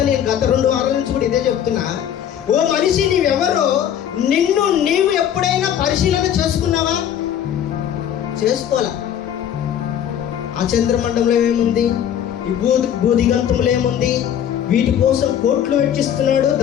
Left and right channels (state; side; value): quieter; right; 9.8 dB